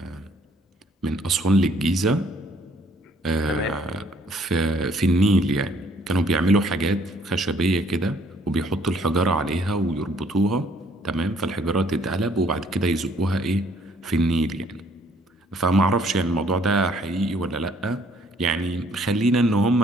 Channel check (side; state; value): both; normal; correlation 0.62